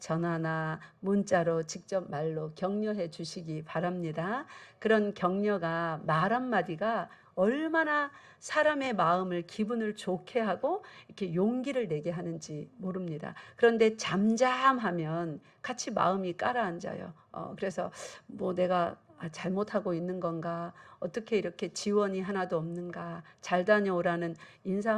문자로 직접 말로 격려해 주시기 바랍니다. 그런 격려가 말 한마디가 얼마나 사람의 마음을 기분을 좋게 하고 이렇게 용기를 내게 하는지 모릅니다. 그런데 잠잠하면 같이 마음이 가라앉아요. 그래서 뭐 내가 잘못하고 있는 건가? 어떻게 이렇게 지원이 하나도 없는가? 잘 다녀오라는 인사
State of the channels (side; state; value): both; identical; correlation 1.00